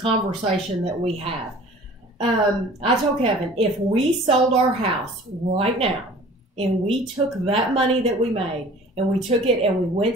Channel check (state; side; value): normal; both; correlation 0.47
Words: conversation that we have. I told Kevin, if we sold our house right now and we took that money that we made and we took it and we went